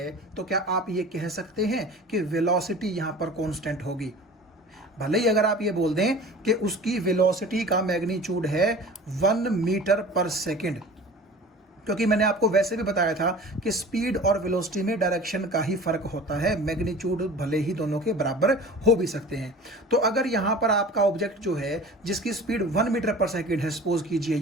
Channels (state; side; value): normal; both; correlation 0.41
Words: तो क्या आप ये कह सकते हैं कि वेलोसिटी यहां पर कांस्टेंट होगी? भले ही अगर आप ये बोल दें कि उसकी वेलोसिटी का मैग्नीट्यूड है 1 मीटर पर सेकंड, क्योंकि मैंने आपको वैसे भी बताया था कि स्पीड और वेलोसिटी में डायरेक्शन का ही फर्क होता है, मैग्नीट्यूड भले ही दोनों के बराबर हो भी सकते हैं। तो अगर यहाँ पर आपका ऑब्जेक्ट जो है जिसकी स्पीड 1 मीटर पर सेकंड है, सपोज कीजिए